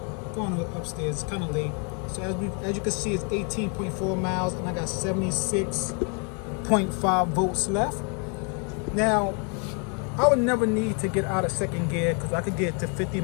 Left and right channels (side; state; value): right; quieter; 37.5 dB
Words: Going upstairs, it's kind of late. So as you can see, it's 18.4 miles, and I got 76.5 volts left. Now, I would never need to get out of second gear because I could get to 50